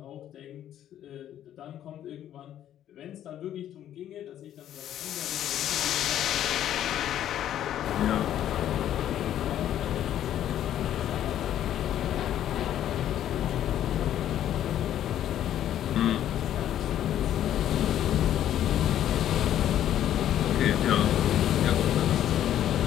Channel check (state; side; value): quieter; right; 11.2 dB